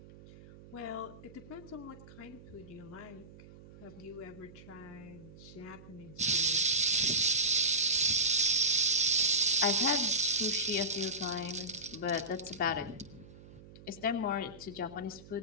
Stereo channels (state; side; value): noise; right; hum, 19 dB below the sound